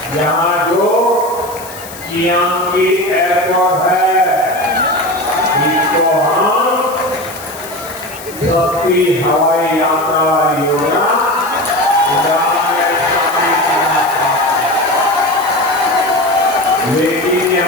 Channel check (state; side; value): noise; left; hiss, 15 dB below the sound